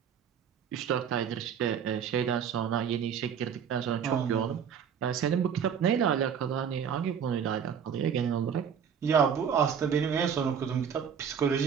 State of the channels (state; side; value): quieter; left; 7.6 dB